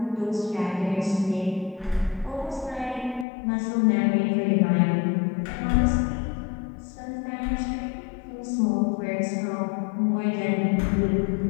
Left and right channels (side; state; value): right; drops out; at 3.2 s